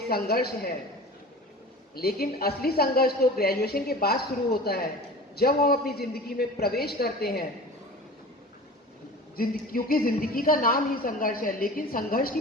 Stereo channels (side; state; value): both; normal; correlation 0.37